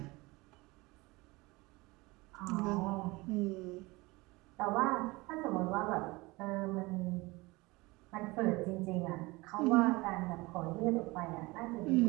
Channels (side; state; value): left; quieter; 22.9 dB